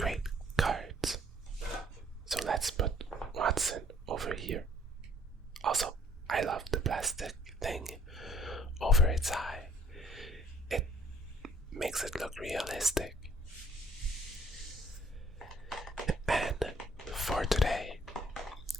cards. So let's put Watson over here. Also, I love the plastic thing over its eye. It makes it look realistic. And for today,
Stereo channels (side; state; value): both; normal; correlation 0.60